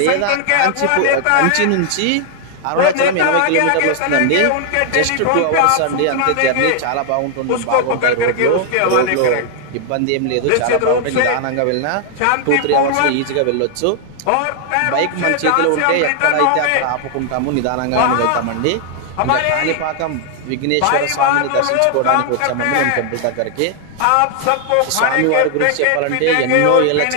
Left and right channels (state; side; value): different; both; correlation 0.00